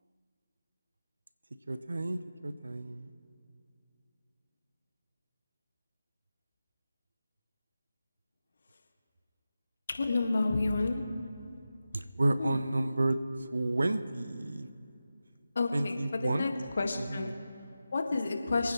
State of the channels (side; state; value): both; inverted; correlation -0.93